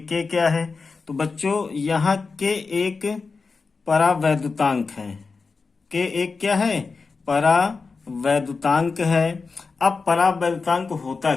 के क्या है। तो बच्चों यहाँ के एक परावैद्युतांक है। के एक क्या है? परावैद्युतांक है। अब परावैद्युतांक होता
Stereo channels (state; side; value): quieter; right; 4.5 dB